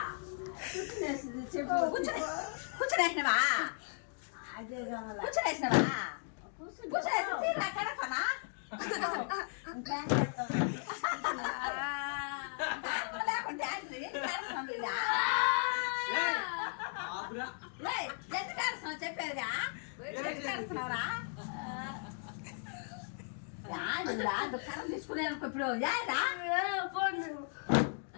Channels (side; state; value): right; silent; 54 dB below the other